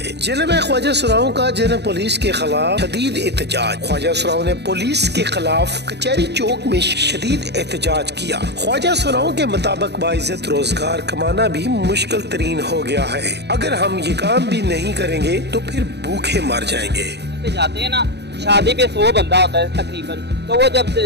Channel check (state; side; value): late; left; 0.49 ms